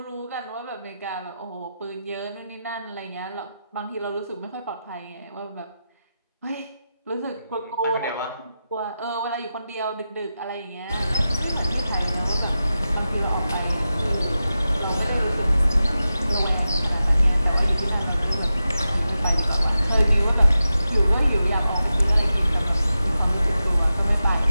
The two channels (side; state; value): both; inverted; correlation -0.92